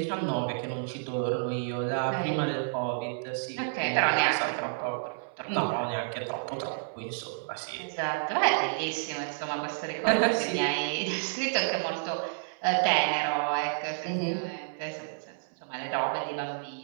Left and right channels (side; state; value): left; silent; 58 dB below the other